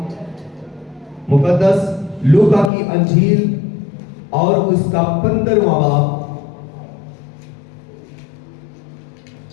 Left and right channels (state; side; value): drops out; right; at 2.7 s